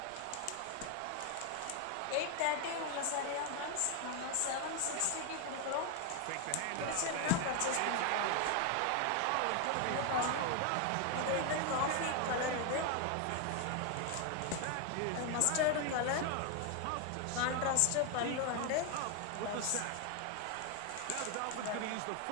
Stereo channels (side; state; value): both; different; correlation 0.01